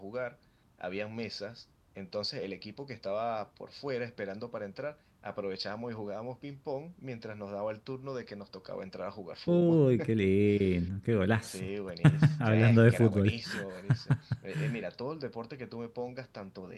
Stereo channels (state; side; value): identical; both; correlation 1.00